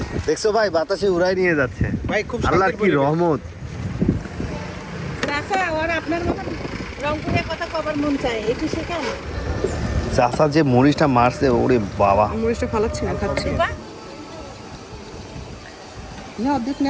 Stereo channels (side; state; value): both; identical; correlation 1.00